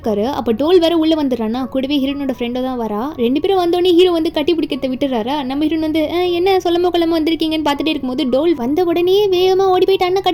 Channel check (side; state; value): both; identical; correlation 1.00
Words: அப்போ டோல் வேற உள்ள வந்துடுறானா, கூடவே ஹீரோனோட ஃப்ரெண்டோ தான் வரா. 2 பேரும் வந்தோடனே ஹீரோ வந்து கட்டி பிடிக்கிறத விட்டுறாரா. நம்ம ஹீரோன் வந்து என்ன சொல்லாம கொள்ளாம வந்திருக்கீங்கன்னு பார்த்துட்டே இருக்கும்போது டோல் வந்த உடனே வேகமாக ஓடி போயிட்டு அண்ணன்